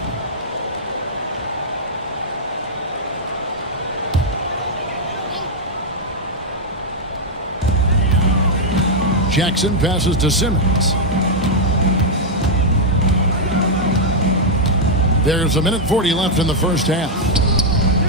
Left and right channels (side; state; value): both; normal; correlation -0.03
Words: Jackson passes to Simmons. There's 1:40 left in the first half.